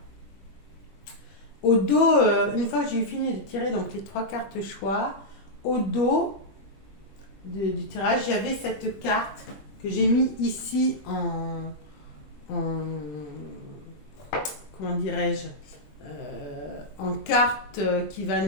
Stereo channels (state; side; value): late; right; 20 ms